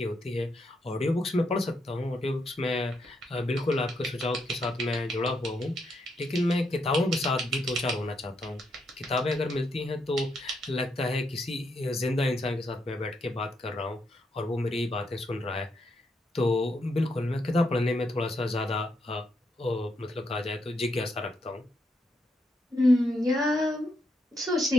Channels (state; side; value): normal; both; correlation 0.79